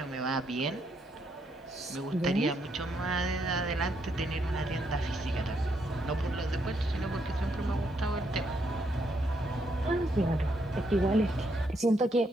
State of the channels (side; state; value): both; normal; correlation 0.76